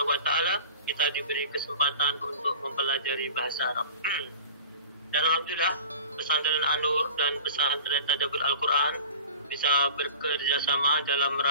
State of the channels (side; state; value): both; inverted; correlation -0.39